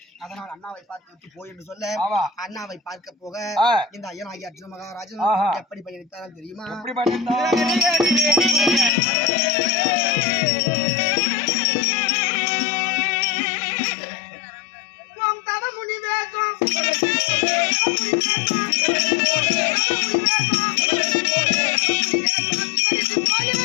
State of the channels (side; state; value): right; drops out; at 8.9 s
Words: அதனால் அண்ணாவை பார்த்து விட்டு போய் என்று சொல்ல அண்ணாவை பார்க்க போக இந்த ஐயனாகி அர்ஜுன மகாராஜன் எப்படி பயணித்தார் தெரியுமா?